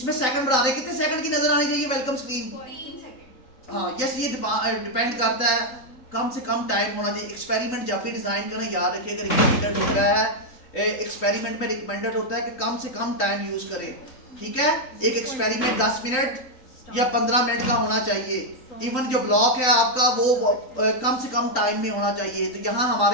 सेकंड बढ़ा दें, कितने सेकंड की नजर आनी चाहिए वेलकम स्क्रीन? 3 सेकंड। हाँ यस, ये डिपेंड करता है, कम से कम टाइम होना चाहिए। एक्सपेरिमेंट जब भी डिजाइन करें याद रखिएगा रिकमेंडेड होता है, एक्सपेरिमेंट में रिकमेंडेड होता है कि कम से कम टाइम यूज करें। ठीक है, एक एक्सपेरिमेंट 10 मिनट या 15 मिनट का होना चाहिए। इवन जो ब्लॉक है आपका वो कम से कम टाइम में होना चाहिए। तो यहाँ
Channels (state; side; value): late; right; 3.8 ms